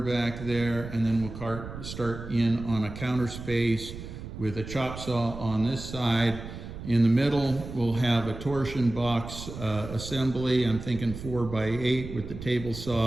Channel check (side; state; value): right; noise; rumble, 11 dB below the sound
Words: there, and then we'll start in on a counter space with a chop saw on this side. In the middle, we'll have a torsion box assembly. I'm thinking 4 by 8 with the table